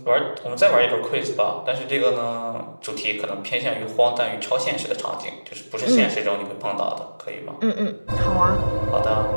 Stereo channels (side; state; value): both; inverted; correlation -1.00